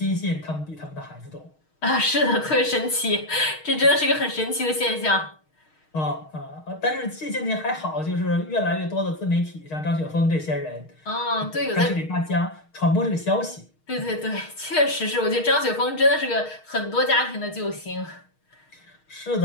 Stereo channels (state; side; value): late; right; 6.4 ms